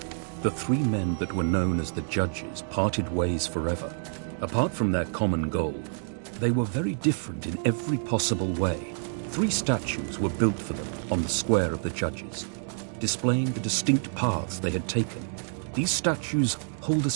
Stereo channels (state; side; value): silent; left; digital silence